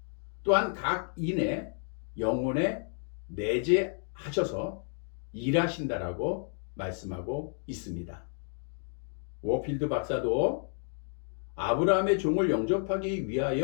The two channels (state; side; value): silent; right; 57 dB below the other